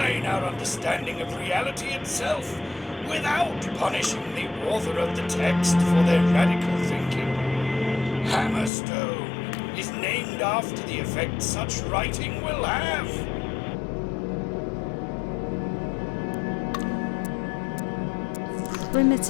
our understanding of reality itself, without punishing the author of the text for their radical thinking. Hammerstone is named after the effect such writing will have.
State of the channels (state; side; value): drops out; right; at 8.7 s